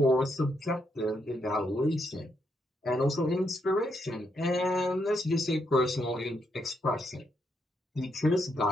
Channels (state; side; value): normal; both; correlation 0.78